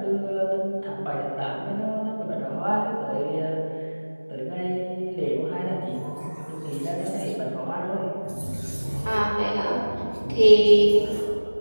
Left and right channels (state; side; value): inverted; both; correlation -1.00